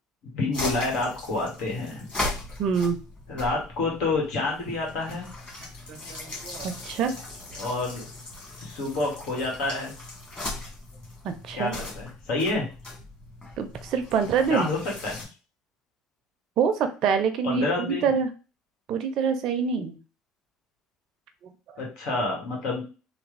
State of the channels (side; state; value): both; normal; correlation 0.41